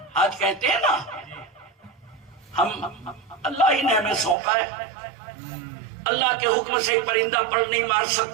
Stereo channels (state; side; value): drops out; left; at 4.4 s